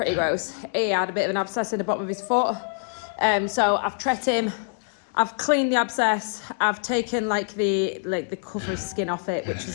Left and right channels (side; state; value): right; silent; digital silence